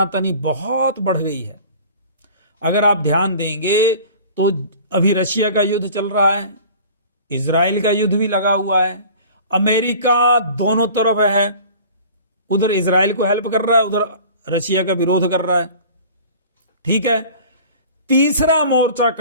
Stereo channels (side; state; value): both; inverted; correlation -0.43